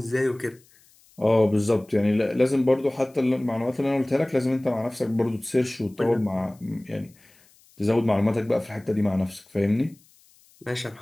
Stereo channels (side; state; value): left; noise; hiss, 30 dB below the sound